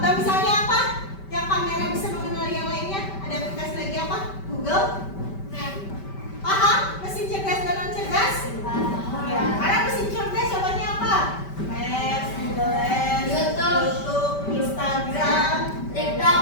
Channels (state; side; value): late; right; 5.2 ms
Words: misalnya apa? Yang kamera bisa mengenali yang lainnya? Ada aplikasi lagi apa? Google? Paham? Mesin cerdas dan non cerdas? Ya, karena mesin cerdas contohnya apa? Maps, Google Lens, YouTube, Instagram, TikTok,